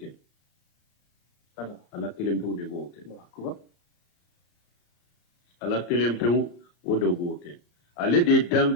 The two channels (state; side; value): late; right; 34 ms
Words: ala kelem pew de boke ala kelem pew o do boke ale de